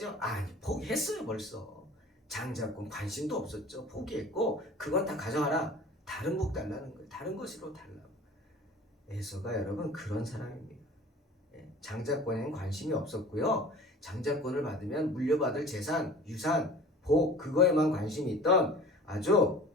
아니, 포기했어요 벌써. 장자권 관심도 없었죠. 포기했고 그건 다 가져가라. 다른 복 달라는 거예요. 다른 것으로 달라고. 에서가 여러분 그런 사람입니다. 장자권에는 관심이 없었고요. 장자권을 받으면 물려받을 재산, 유산, 복 그거에만 관심이 있던 아주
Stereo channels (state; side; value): normal; both; correlation 0.43